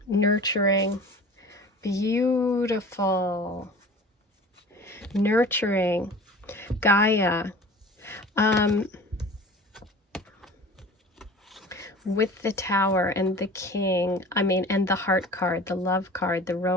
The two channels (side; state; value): both; normal; correlation 0.41